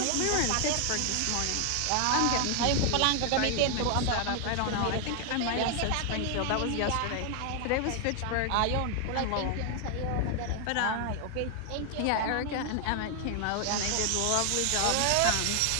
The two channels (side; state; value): both; different; correlation 0.00